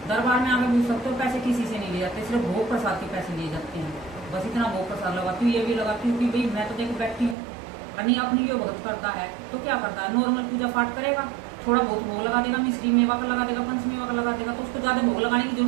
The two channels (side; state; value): left; drops out; at 7.4 s